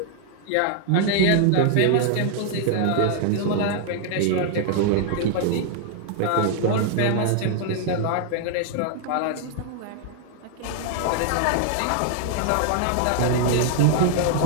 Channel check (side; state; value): both; different; correlation 0.00